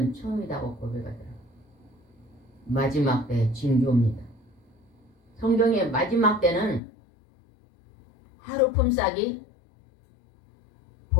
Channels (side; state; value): right; drops out; at 6.8 s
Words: 처음이라고 고백하더라고요. 마지막 때 징조입니다. 성경의 마지막 때는 하루 품삯이